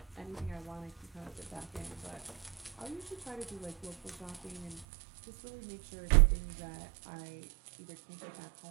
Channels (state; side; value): drops out; left; at 4.9 s